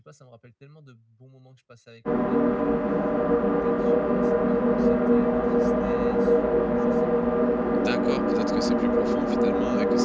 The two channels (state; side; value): identical; both; correlation 1.00